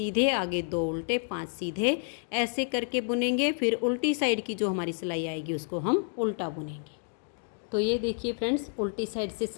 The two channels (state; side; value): silent; right; 58 dB below the other